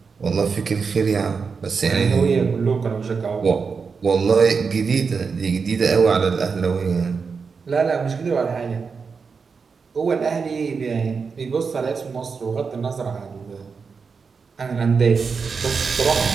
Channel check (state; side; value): quieter; left; 5.3 dB